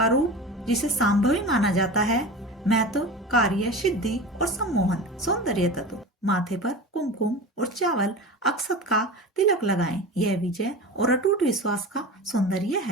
रूप जिसे संभवी माना जाता है। महत्व, कार्य सिद्धि और सम्मोहन। सौंदर्य तत्व, माथे पर कुमकुम और चावल अक्षत का तिलक लगाएं। यह विजय और अटूट विश्वास का सौंदर्य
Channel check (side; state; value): both; normal; correlation 0.31